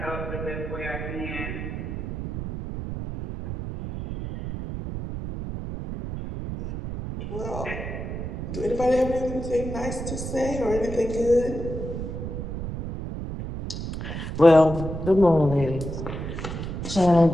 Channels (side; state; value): right; noise; rumble, 6 dB below the sound